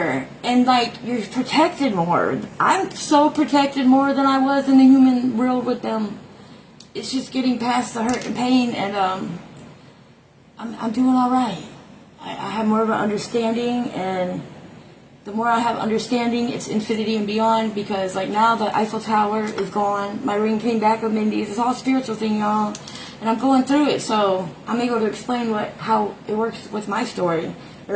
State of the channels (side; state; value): both; identical; correlation 1.00